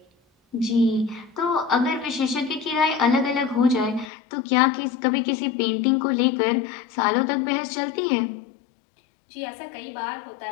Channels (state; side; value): drops out; right; at 4.0 s